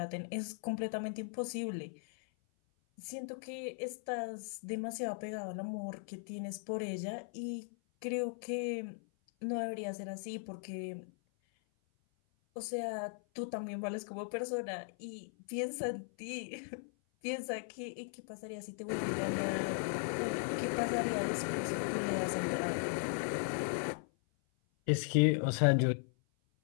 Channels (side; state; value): right; silent; 53 dB below the other